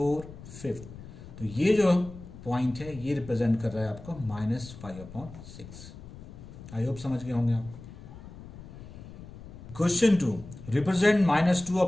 5। तो ये जो पॉइंट है ये रिप्रेजेंट कर रहा है आपको -5 अपॉन 6। आई होप समझ गए होंगे आप। Question 2, represent -2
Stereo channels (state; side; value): noise; left; rumble, 15 dB below the sound